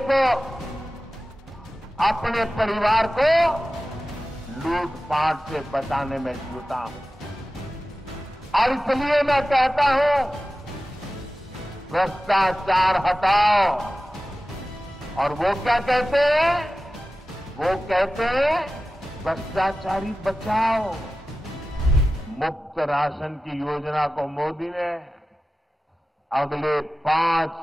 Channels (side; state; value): both; normal; correlation 0.95